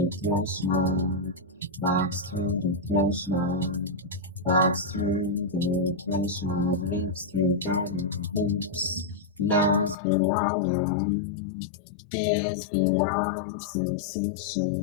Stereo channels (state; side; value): drops out; right; at 10.0 s